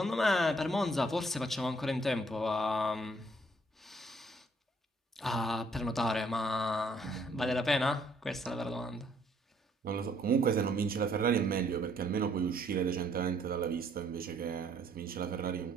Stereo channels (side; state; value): both; normal; correlation 0.65